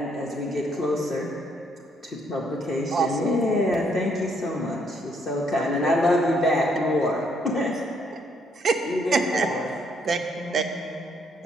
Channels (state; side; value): normal; both; correlation 0.70